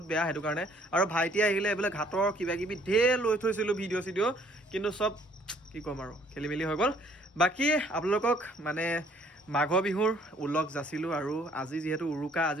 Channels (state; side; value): normal; both; correlation 0.61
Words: বেয়া হেতু কাৰণে আৰু ভাইটি আহিলে এবেলে ঘাটৰ কিবা কিবি ঢেৰ লৈ থৈছিল ভিডিও কিন্তু সব কি কম আৰু খেলিমেলি হৈ গল বাকি আপোনালোকক মানে মাঘ বিহুৰ উল্লেখ যাচিলো আৰু আজি যেহেতু উৰুকা